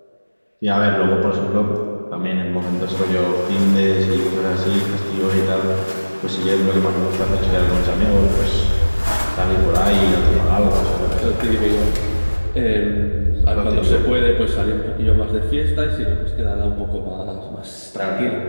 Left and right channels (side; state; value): both; inverted; correlation -1.00